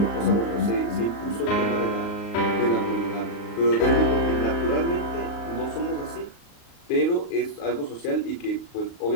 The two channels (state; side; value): late; right; 38 ms